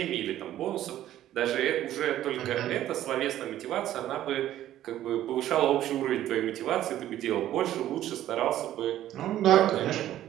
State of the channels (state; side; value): quieter; left; 12.8 dB